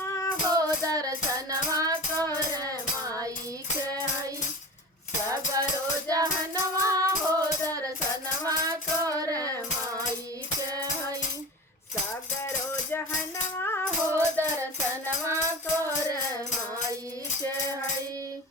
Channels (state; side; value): normal; both; correlation 0.33